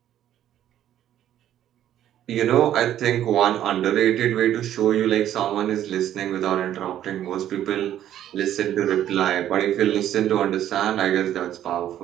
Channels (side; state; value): left; quieter; 11.5 dB